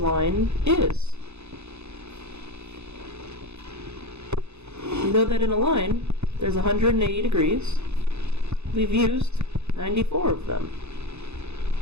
is. We know that in a line, there's 180 degrees. We've used 94 of them.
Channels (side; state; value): left; late; 0.81 ms